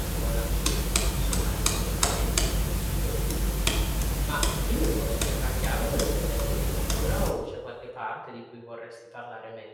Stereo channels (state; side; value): identical; both; correlation 1.00